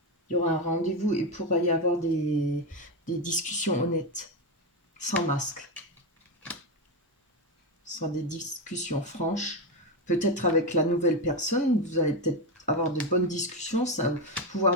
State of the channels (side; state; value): both; normal; correlation 0.12